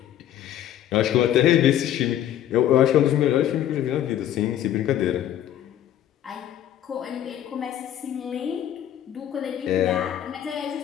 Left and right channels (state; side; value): quieter; right; 11.3 dB